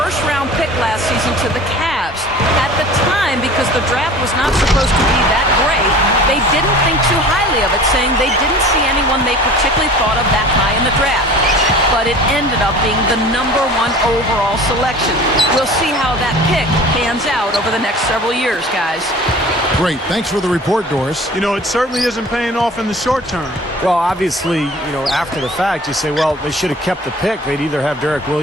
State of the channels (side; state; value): both; normal; correlation 0.43